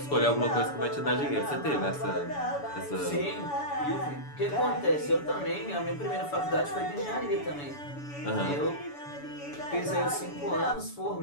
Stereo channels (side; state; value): right; late; 7.0 ms